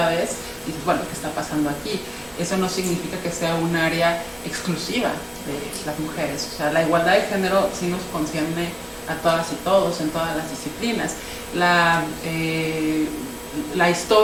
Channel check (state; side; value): identical; both; correlation 1.00